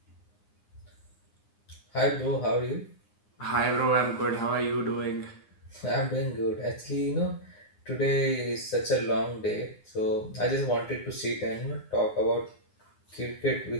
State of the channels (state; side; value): late; right; 9.8 ms